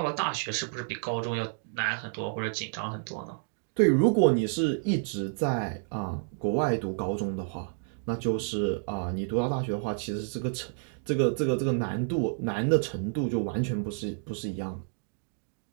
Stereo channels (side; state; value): left; silent; digital silence